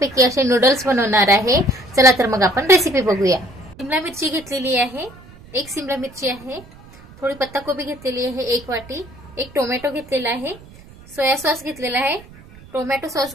असे नूडल्स बनवणार आहे। चला तर मग आपण रेसिपी बघूया। शिमला मिरची घेतलेली आहे, एक शिमला मिरची आहे, थोडी पत्ताकोबी घेतलेली आहे, एक वाटी, एक टोमॅटो घेतलेला आहे, सोया सॉस घेतलेला आहे, टोमॅटो सॉस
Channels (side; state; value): right; noise; rumble, 21 dB below the sound